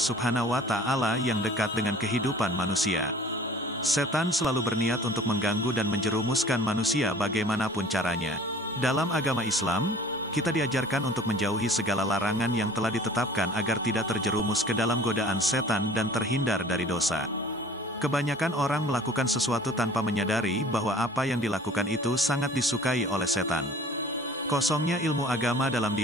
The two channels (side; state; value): both; normal; correlation 0.48